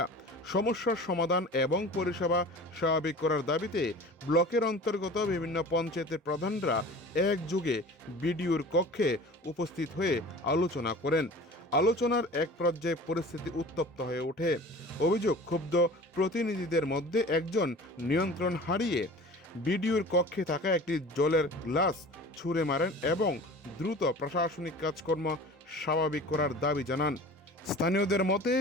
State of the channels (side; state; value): both; normal; correlation 0.41